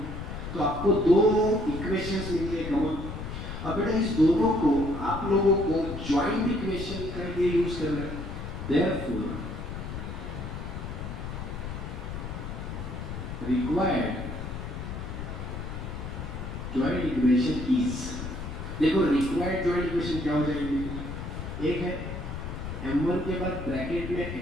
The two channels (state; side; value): noise; left; rumble, 7 dB below the sound